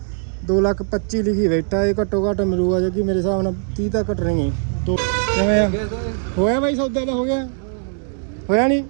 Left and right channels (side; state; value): left; silent; 65 dB below the other